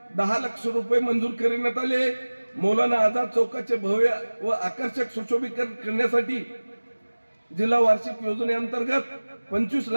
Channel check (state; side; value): inverted; both; correlation -1.00